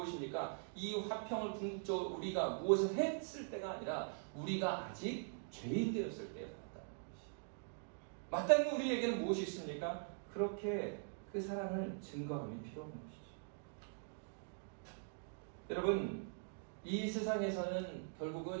이 화평을 궁극적으로 우리가 무엇을 했을 때가 아니라 우리가 아직 죄인 되었을 때에 살았다는 것이죠. 마땅히 우리에게는 무엇이 있습니까? 그렇게 그 사랑을 증거함이 필요한 것이죠. 여러분, 이 세상에서는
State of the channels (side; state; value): left; silent; digital silence